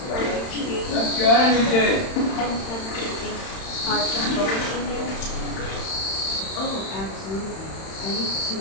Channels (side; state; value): right; late; 31 ms